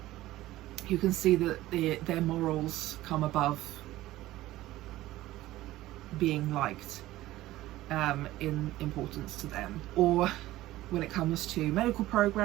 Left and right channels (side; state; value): left; quieter; 16.1 dB